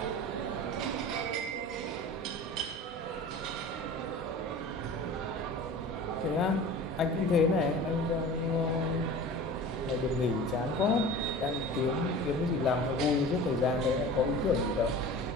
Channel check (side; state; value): both; normal; correlation 0.38